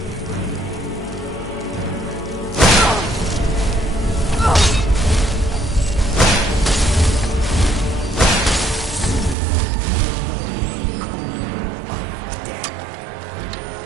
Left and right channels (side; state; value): left; drops out; at 9.3 s